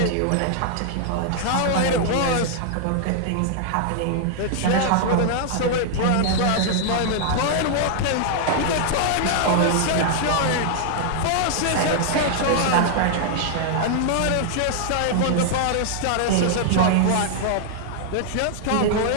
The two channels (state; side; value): different; both; correlation -0.01